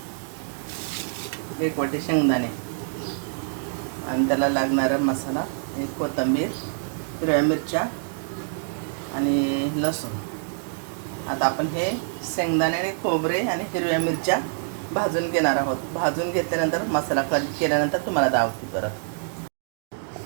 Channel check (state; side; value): silent; left; digital silence